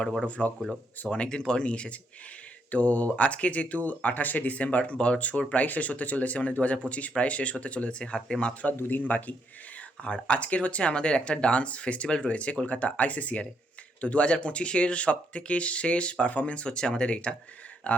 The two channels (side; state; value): both; normal; correlation 0.75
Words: বড় ভ্লগগুলো। সো অনেকদিন পর নিয়ে এসেছি। তো আজকে যেহেতু 28শে ডিসেম্বর, বছর প্রায় শেষ হতে চলেছে, মানে 2025 প্রায় শেষ হতে চলেছে, হাতে মাত্র আর 2 দিন বাকি। আর আজকের হচ্ছে আমাদের একটা ডান্স ফেস্টিভ্যাল রয়েছে কলকাতা আইসিসিআরে। তো 2025-এর সবথেকে শেষ পারফরমেন্স হচ্ছে আমাদের এইটা,